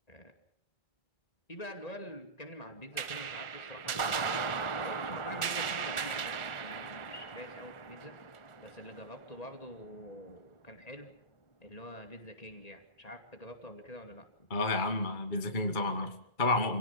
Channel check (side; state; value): right; late; 1.4 ms